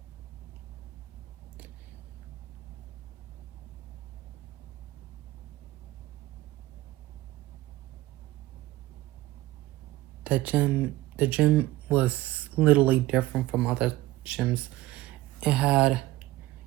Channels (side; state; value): left; quieter; 17.0 dB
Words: The gym was literally different from other gyms. It had